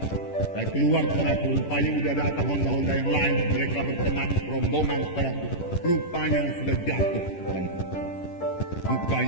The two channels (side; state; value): right; late; 10 ms